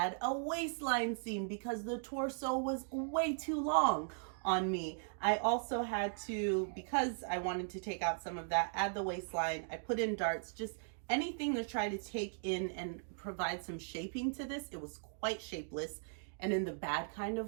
a waistline seam because the torso was way too long on me. I also had to, because I wanted to take out some of that, add the waistline. I put in darts, just anything to try to take in and provide some shaping to this. It was quite shapeless, and in the bad kind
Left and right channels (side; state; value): left; silent; digital silence